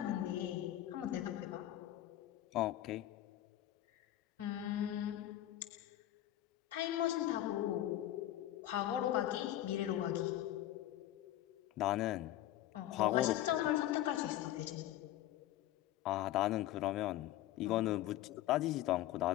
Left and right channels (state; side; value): quieter; right; 13.7 dB